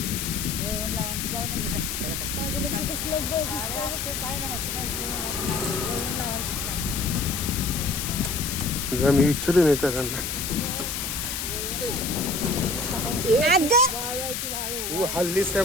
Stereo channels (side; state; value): left; noise; hiss, 3 dB below the sound